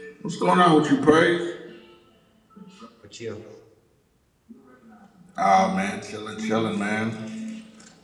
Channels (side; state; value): both; identical; correlation 1.00